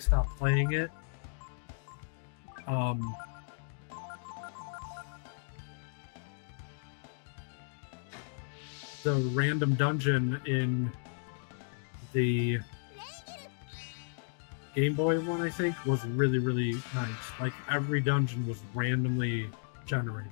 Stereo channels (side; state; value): right; silent; 55 dB below the other